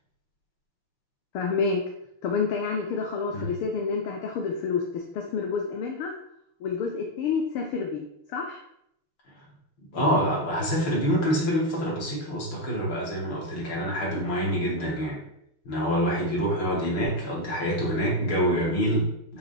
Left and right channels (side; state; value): right; late; 6.6 ms